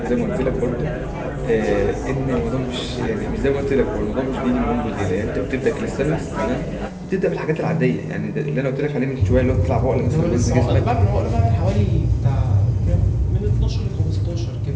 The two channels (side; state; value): both; identical; correlation 1.00